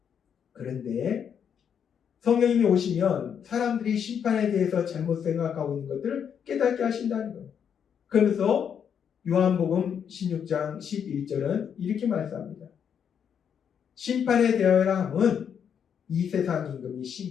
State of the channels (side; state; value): right; quieter; 7.9 dB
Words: 그런데 성령님이 오시면 사람들이 심판에 대해서 잘못 생각하고 있는 것들을 깨닫게 하신다는 거예요. 그러면서 요한복음 16장 11절은 이렇게 말씀합니다. 심판에 대하여라 함은 이 세상 임금이